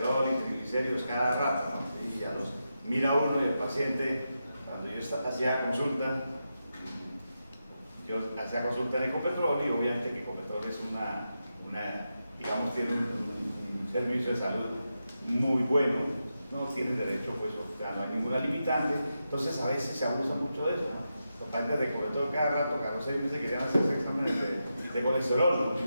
y triglicéridos cada rato, ¿no? Y ya los mira uno y el paciente, cuando yo hacía consulta, yo hacía consulta en Ecopetrol y obviamente que Ecopetrol es digamos, tiene un servicio de salud muy bueno, no tienen derecho, pues, o sea, no hay ninguna limitante, entonces a veces se abusa mucho de eso, ¿no? Los pacientes de Ecopetrol cada rato, cada 6 meses querían hacerse exámenes de colesterol,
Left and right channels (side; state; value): both; inverted; correlation -0.88